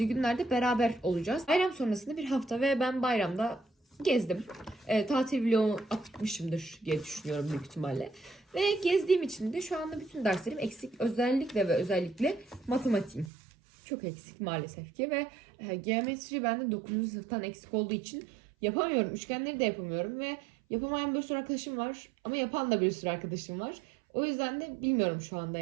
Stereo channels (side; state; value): left; drops out; at 13.3 s